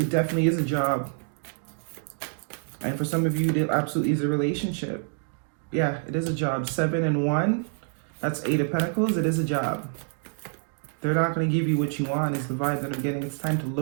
definitely is a job. And for some of you, it absolutely is a relationship. Yeah, it is a job. 7 and 1. That's 8 of Pentacles. It is a job. They're not going to give you what you want is the vibe that I'm getting. It's time to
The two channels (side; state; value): left; silent; 58 dB below the other